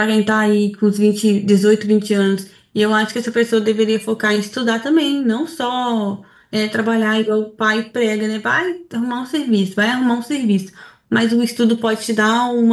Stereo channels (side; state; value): both; identical; correlation 1.00